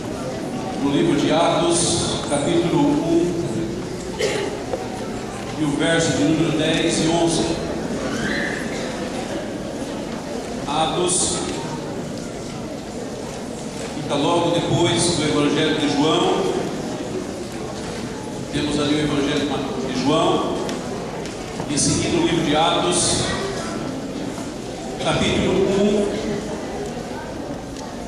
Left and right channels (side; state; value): both; identical; correlation 1.00